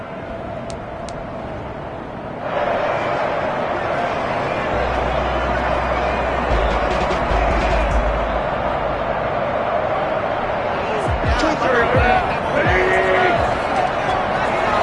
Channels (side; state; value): both; identical; correlation 1.00